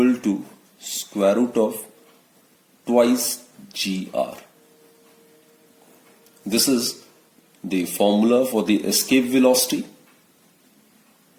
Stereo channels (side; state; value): both; identical; correlation 1.00